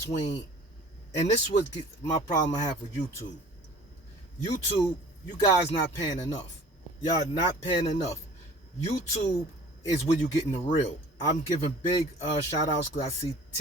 between, and this was my problem I have with YouTube. YouTube, you guys not paying enough. Y'all not paying enough. YouTube is where you getting the real. I'm giving big shout outs because I see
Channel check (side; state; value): both; normal; correlation 0.47